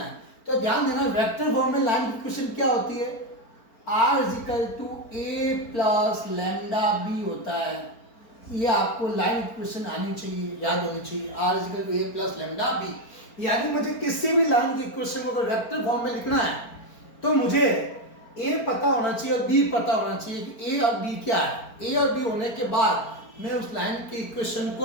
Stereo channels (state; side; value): late; right; 4.4 ms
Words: है। तो ध्यान देना, वेक्टर फॉर्म में लाइन की इक्वेशन क्या होती है? r is equal to A plus lambda B होता है। ये आपको लाइन इक्वेशन आनी चाहिए, याद होनी चाहिए। r is equal to A plus lambda B. यानी मुझे किसी भी लाइन की इक्वेशन को अगर वेक्टर फॉर्म में लिखना है तो मुझे ए पता होना चाहिए और बी पता होना चाहिए कि ए और बी क्या है। ए और बी होने के बाद मैं उस लाइन की इक्वेशन